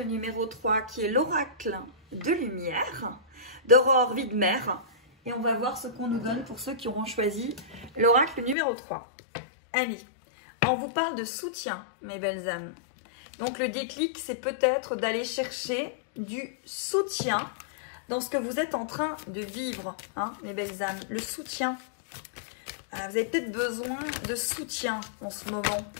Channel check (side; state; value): right; drops out; at 8.6 s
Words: numéro 3, qui est l'oracle de lumière, d'Aurore Widmer. Et on va voir ce qu'on nous donne pour ceux qui auront choisi l'oracle numéro 3. Allez, on vous parle de soutien, mes belles âmes. Donc le déclic, c'est peut-être d'aller chercher du soutien dans ce que vous êtes en train de vivre, hein, mes belles âmes. Le soutien. Vous avez peut-être besoin de soutien en ce moment,